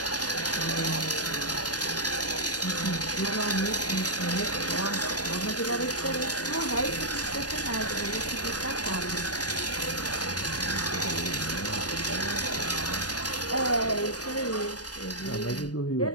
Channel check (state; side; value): late; right; 0.68 ms